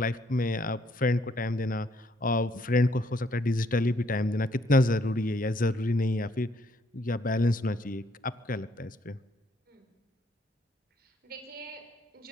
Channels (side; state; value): both; normal; correlation 0.69